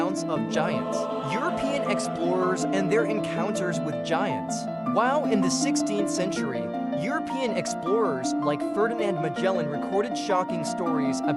of giants. European explorers and their encounters with giants. While in the 16th century, European explorers like Ferdinand Magellan recorded shocking stories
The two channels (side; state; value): both; identical; correlation 1.00